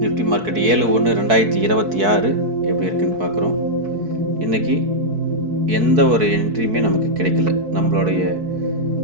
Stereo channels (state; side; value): late; left; 4.6 ms